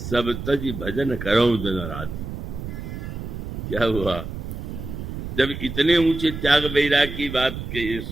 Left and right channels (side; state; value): right; noise; rumble, 7 dB below the sound